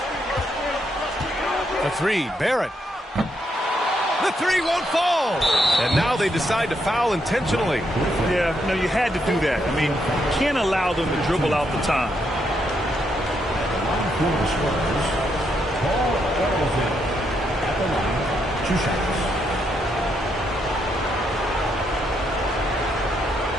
The 3, Barrett. The 3 won't fall. And now they decide to foul intentionally. Yeah, no, you had to do that. I mean, you can't allow them to dribble out the time. At the line, 2 shots.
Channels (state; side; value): normal; both; correlation 0.78